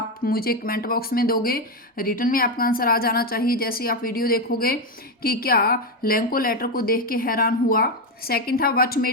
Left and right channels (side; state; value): both; normal; correlation 0.08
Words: मुझे कमेंट बॉक्स में दोगे, रिटर्न में आपका आंसर आ जाना चाहिए जैसे ही आप वीडियो देखोगे कि क्या लेंको लेटर को देख के हैरान हुआ। सेकंड था व्हाट